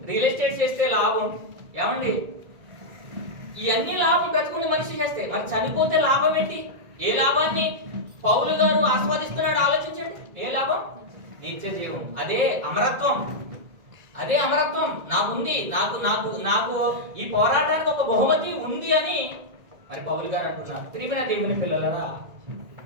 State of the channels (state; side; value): late; left; 1.8 ms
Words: రియల్ ఎస్టేట్ చేస్తే లాభం, ఏమండి ఇవన్నీ లాభం బ్రతుకుంటే మనిషి చేస్తే. మరి చనిపోతే లాభం ఏంటి? ఏ లాభాన్ని పౌలు గారు ఆస్వాదిస్తున్నాడు ఆలోచించండి. ఏ లాభం? నిత్య జీవం. అదే అమరత్వం. అదే అమరత్వం నాకుంది. నాకు నాకు నాకు ఈ పోరాటానికి ఒక బహుమతి ఉంది అని మరి పౌలు గారు అంటున్నారు. ప్రియమైన దేవుని పిల్లలరా,